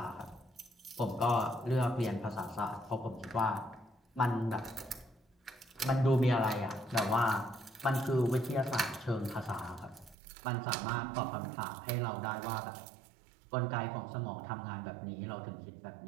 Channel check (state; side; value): drops out; left; at 10.2 s